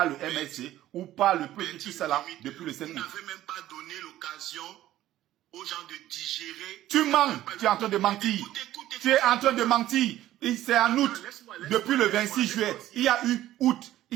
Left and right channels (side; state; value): left; quieter; 13.9 dB